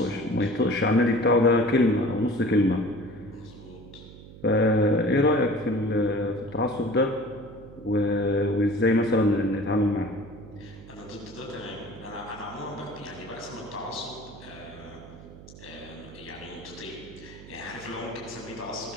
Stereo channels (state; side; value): noise; right; hum, 17 dB below the sound